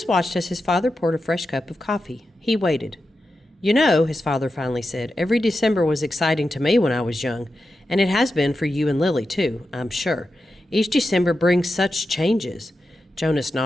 watched as his father poured a fresh cup of coffee. He waited. "You know," his father finally said, "every December was exciting to me when I was young, and it has been for you and Lily, too, I'm sure. Each December brings such changes." Jonas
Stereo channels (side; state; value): both; normal; correlation 0.90